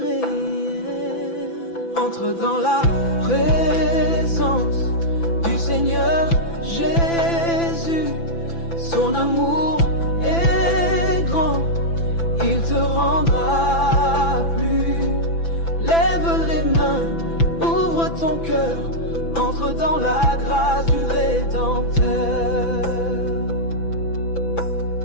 Entre dans la présence du Seigneur Jésus, son amour est grand, il te rendra plus. Lève les mains, ouvre ton cœur, entre dans la grâce du Rédempteur.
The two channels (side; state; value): right; late; 6.0 ms